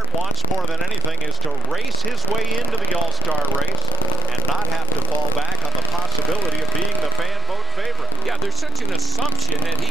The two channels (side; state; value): both; normal; correlation 0.14